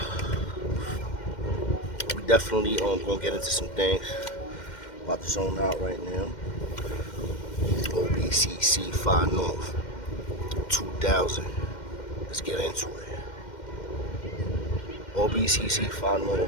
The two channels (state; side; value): late; right; 2.1 ms